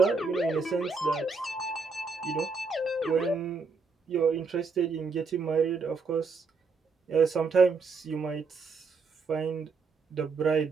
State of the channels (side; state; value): left; quieter; 4.5 dB